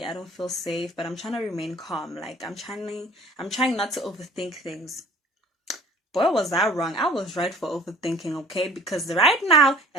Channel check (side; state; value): both; normal; correlation 0.49